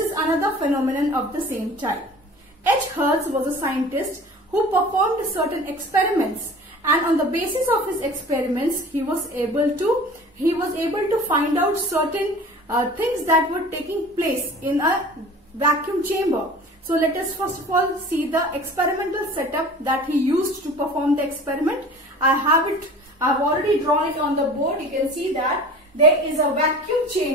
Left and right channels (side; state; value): both; normal; correlation 0.42